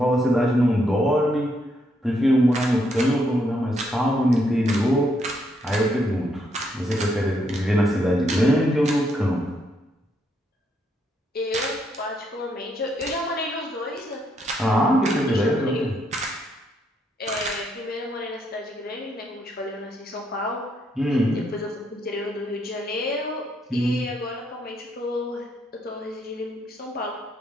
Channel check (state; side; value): normal; both; correlation 0.75